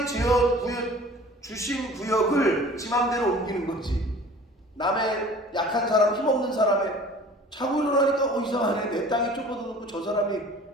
주신 구역을 지 맘대로 옮기는 거지. 남의 약한 사람, 힘없는 사람의 자고 일어나니까 이상하네. 내 땅이 좁아졌고 저 사람이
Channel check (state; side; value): normal; both; correlation 0.46